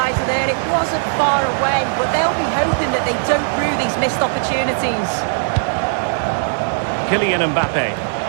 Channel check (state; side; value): silent; left; digital silence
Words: there. It wasn't far away, but they'll be hoping that they don't rue these missed opportunities. Kylian Mbappe.